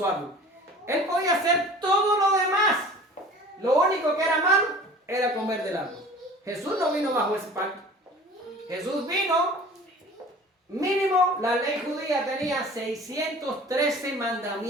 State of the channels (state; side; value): normal; both; correlation 0.43